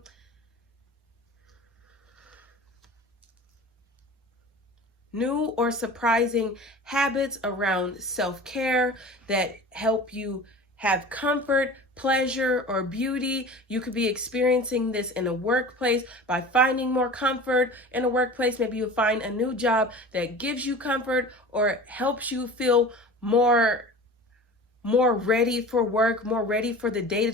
habits around self-care that help you have comfort, pleasure, or beauty. You could be experiencing this in a workplace by finding more comfort in a workplace. Maybe you'll find a new job that gives you comfort or helps you feel more ready for work, more ready for the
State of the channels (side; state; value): both; normal; correlation 0.38